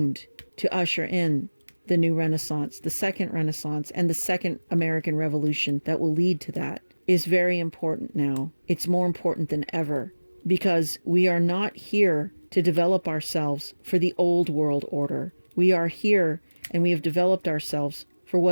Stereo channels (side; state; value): both; inverted; correlation -1.00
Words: to usher in the new Renaissance, the second Renaissance, and the second American Revolution that will lead to that, is very important now. It's more important than ever, because we are not here to develop ourselves for the old world order. We are here and we have developed ourselves for